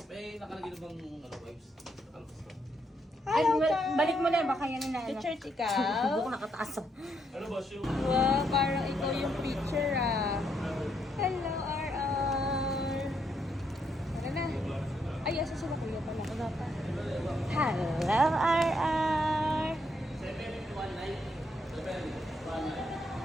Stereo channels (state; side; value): normal; both; correlation 0.76